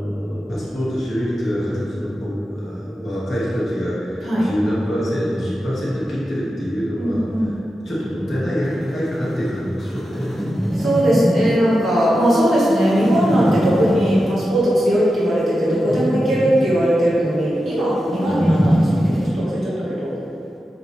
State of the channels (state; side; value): normal; both; correlation 0.90